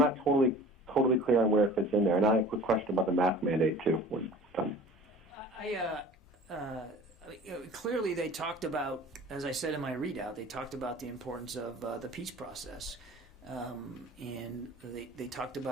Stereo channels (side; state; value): both; normal; correlation 0.43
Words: totally clear on where it fits in there. And I have a quick question about the mask mandate, too. When done. Clearly they talked about, as I said in my readout, they talked about the importance of the peace process. And they talked